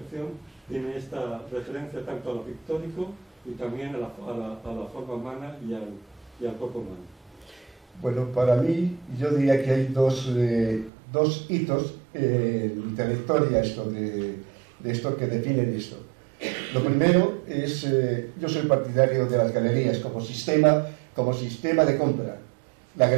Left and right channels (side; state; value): left; drops out; at 10.9 s